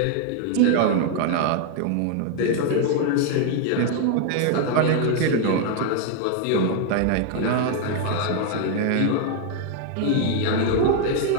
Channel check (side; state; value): both; different; correlation 0.00